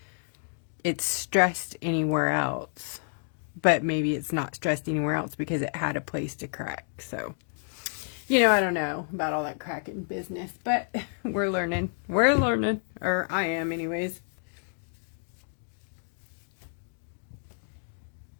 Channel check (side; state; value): right; silent; 58 dB below the other